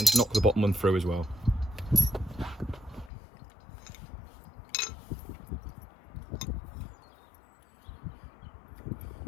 knock the bottom one through as well.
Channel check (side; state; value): right; drops out; at 3.1 s